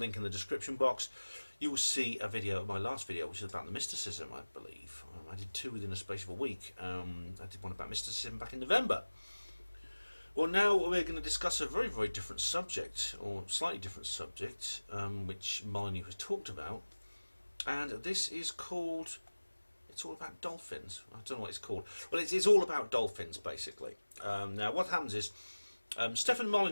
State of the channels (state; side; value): inverted; both; correlation -1.00